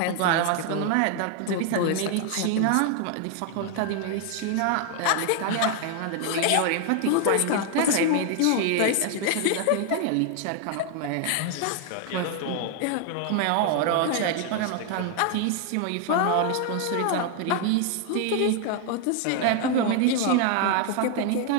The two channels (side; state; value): both; different; correlation 0.00